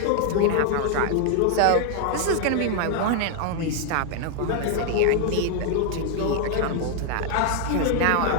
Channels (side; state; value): both; different; correlation 0.00